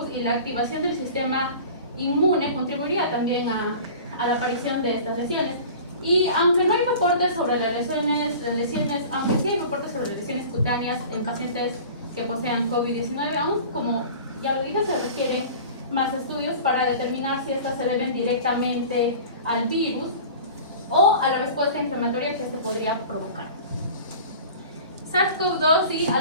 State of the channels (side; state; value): both; inverted; correlation -0.40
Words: y la activación del sistema inmune contribuiría también a la aparición de estas lesiones. Y aunque no hay reportes sobre las lesiones, aunque sí hay reportes sobre lesiones cutáneas en pacientes que posean COVID-19, aún como ya lo dije, se requieren más estudios para determinar si estas se deben directamente al virus o a la respuesta inflamatoria que este podría provocar. SARS-CoV-2 y